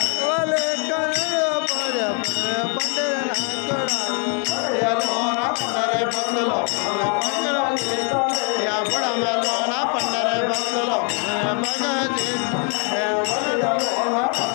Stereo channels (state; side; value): quieter; right; 39.7 dB